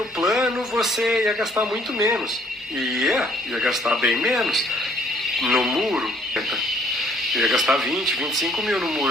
plano, você ia gastar muito menos. Ia gastar bem menos no muro. Ia gastar 20, 25 mil no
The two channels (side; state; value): both; normal; correlation 0.62